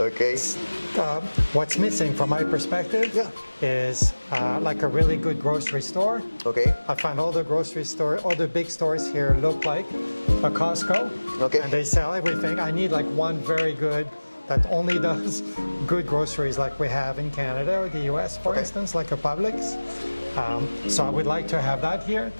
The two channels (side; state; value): both; inverted; correlation -1.00